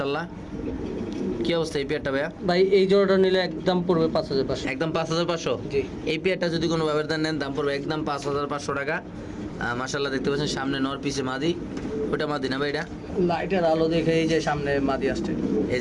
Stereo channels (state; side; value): identical; both; correlation 1.00